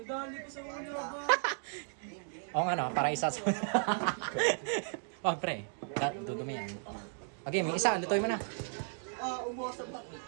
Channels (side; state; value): left; silent; 54 dB below the other